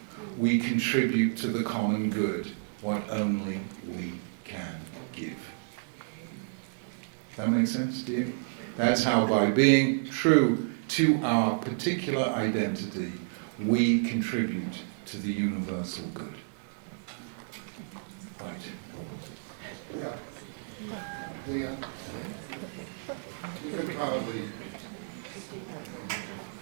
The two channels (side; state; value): left; silent; digital silence